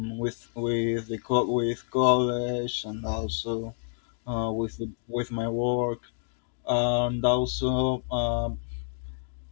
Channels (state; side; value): silent; right; digital silence